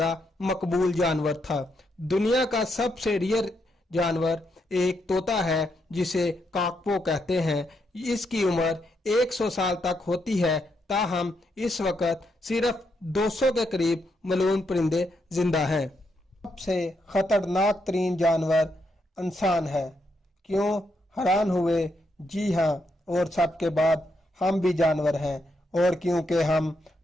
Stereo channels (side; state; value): both; normal; correlation 0.79